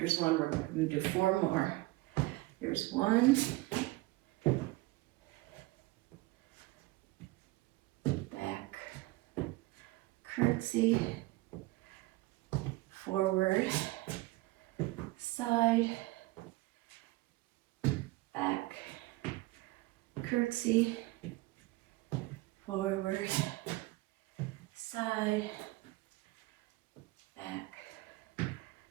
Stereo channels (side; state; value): left; quieter; 20.3 dB